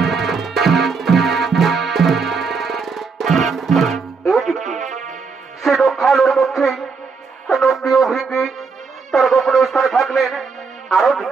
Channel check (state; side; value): quieter; left; 4.9 dB